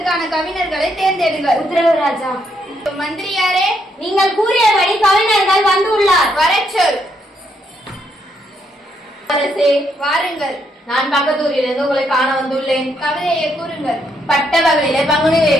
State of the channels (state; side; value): normal; both; correlation 0.75